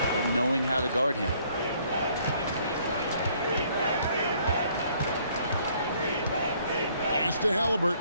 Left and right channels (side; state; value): both; inverted; correlation -0.63